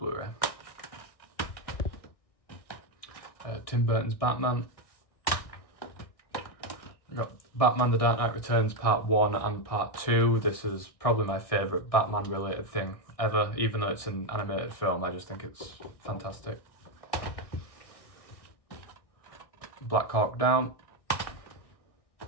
Tim Burton's Batman. We've got Batman The Dark Knight Returns Part 1 and Part 2. This is probably my favourite Batman related thing ever, even though it's an animated film, I just think it's fantastic. Black Hawk Down.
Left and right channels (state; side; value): late; right; 1.6 ms